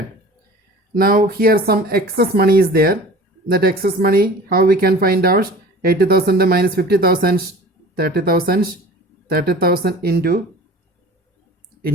Now here some excess money is there. That excess money, how we can find out? 80,000 minus 50,000, 30,000, 30,000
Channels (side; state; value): both; normal; correlation 0.42